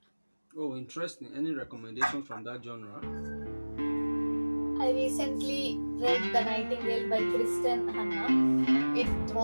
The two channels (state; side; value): inverted; both; correlation -1.00